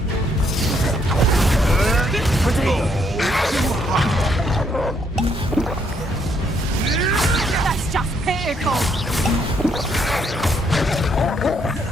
That's just pitiful!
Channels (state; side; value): normal; both; correlation 0.72